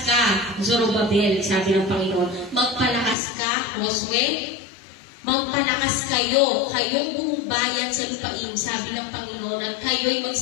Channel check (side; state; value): right; drops out; at 3.2 s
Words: ka, Zorobabel, sabi ng Panginoon. Magpalakas ka, Josue. Magpalakas kayo, kayong buong bayan sa lupain, sabi ng Panginoon, at kayo'y